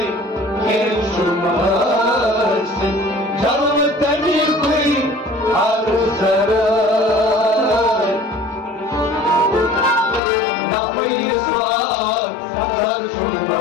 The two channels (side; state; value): right; drops out; at 10.2 s